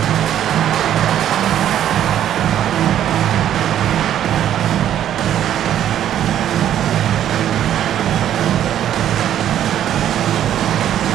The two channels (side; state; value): left; quieter; 10.9 dB